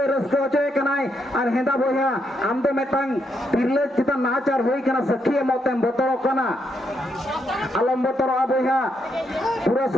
रस्को होचोय कनाय और हेंदा बोया आम दो मेटांग तिरले चिता नाचार होई कना सखी मौतेम बतरो कना अलम बतरो बोया पूरा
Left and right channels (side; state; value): both; normal; correlation 0.78